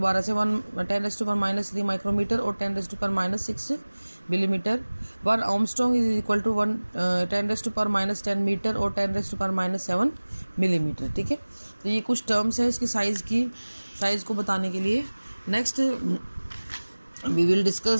से, 10⁻³ माइक्रोमीटर और 10⁻⁶ millimetre. 1 Armstrong is equal to 10⁻10 metre और 10⁻7 मिलीमीटर. ठीक है, तो ये कुछ टर्म्स है इसकी साइज को बताने के लिए. Next we will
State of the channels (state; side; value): inverted; both; correlation -1.00